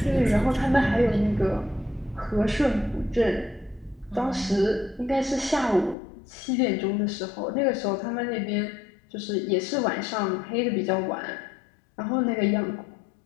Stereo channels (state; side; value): drops out; right; at 6.0 s